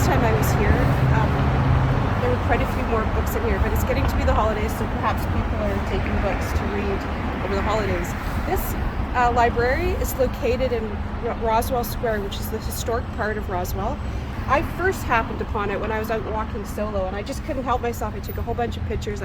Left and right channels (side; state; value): both; identical; correlation 1.00